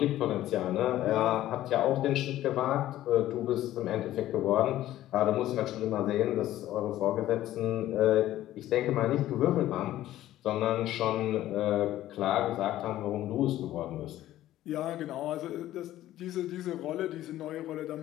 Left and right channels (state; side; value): quieter; right; 13.9 dB